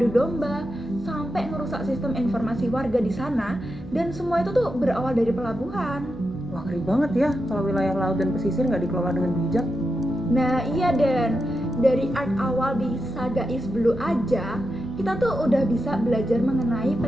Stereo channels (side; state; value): both; normal; correlation 0.88